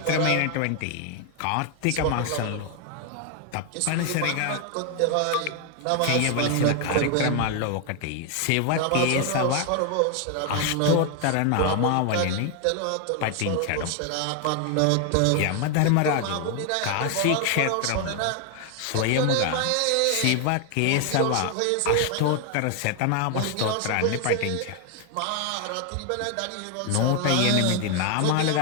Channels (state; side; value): different; both; correlation 0.01